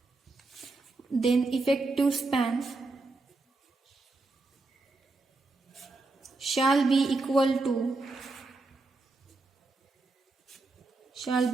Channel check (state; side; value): quieter; left; 3.4 dB